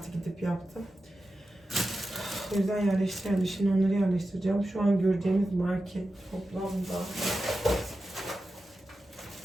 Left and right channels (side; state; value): both; normal; correlation 0.92